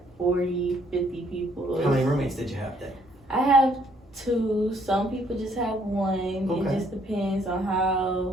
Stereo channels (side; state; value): both; normal; correlation 0.66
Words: 40, 50 people. How many roommates did you have then? I have 2. Some people just have 1. Okay. It just depends on